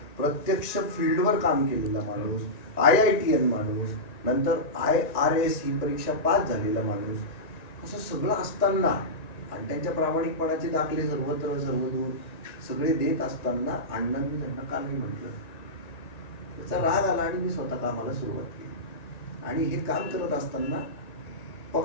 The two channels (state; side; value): late; right; 1.9 ms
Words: प्रत्यक्ष फील्डवर काम केलेला माणूस, IITN माणूस, नंतर IRS ही परीक्षा पास झालेला माणूस, असं सगळं असताना आणि त्यांच्या प्रामाणिकपणाचे दाखले सर्वत्र सर्वदूर सगळे देत असताना अण्णांनी त्यांना का नाही म्हटलं? त्याचा राग आला आणि मी स्वतः कामाला सुरुवात केली. आणि हे काम करत असताना